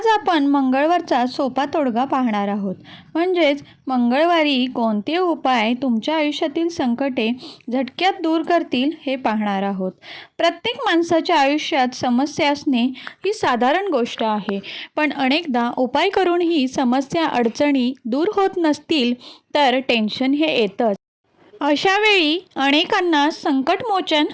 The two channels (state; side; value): identical; both; correlation 1.00